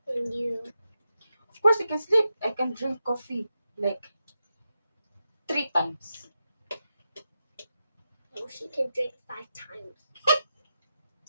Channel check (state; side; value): inverted; both; correlation -0.89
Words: And you. Of course, I can sleep. I can drink coffee like 3 times. Oh, she can drink 5 times.